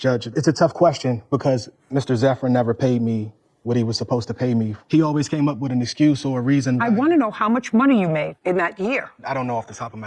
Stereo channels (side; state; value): both; identical; correlation 1.00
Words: it's a tough question because Mr. Zephyrin never paid me what he was supposed to pay me. He always came up with an excuse or a reason. I want to know how much money you made in that year. I don't know off the top of